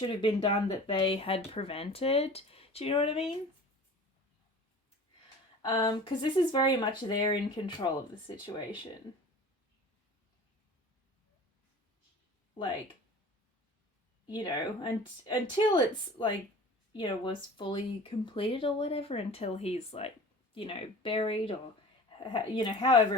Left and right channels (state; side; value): normal; both; correlation 0.41